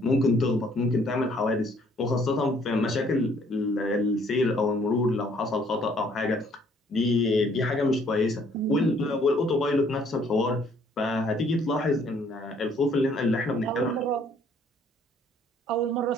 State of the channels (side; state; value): both; normal; correlation 0.62